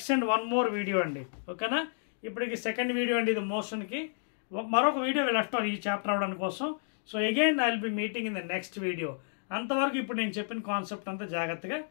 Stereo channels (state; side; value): silent; right; digital silence